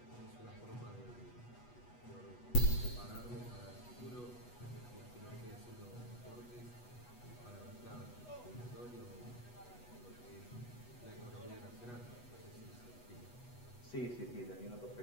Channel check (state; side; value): late; right; 8.2 ms